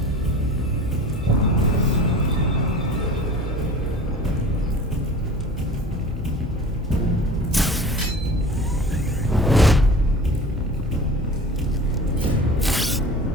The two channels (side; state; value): both; normal; correlation 0.40